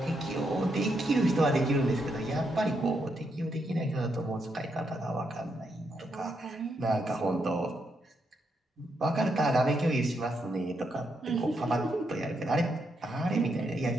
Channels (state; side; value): normal; both; correlation 0.80